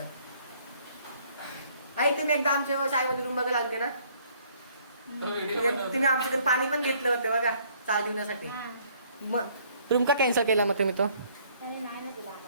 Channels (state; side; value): inverted; both; correlation -0.62